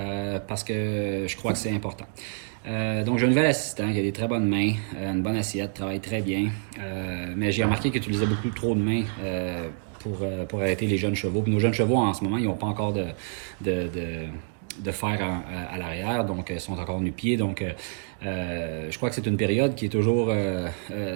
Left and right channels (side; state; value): left; silent; digital silence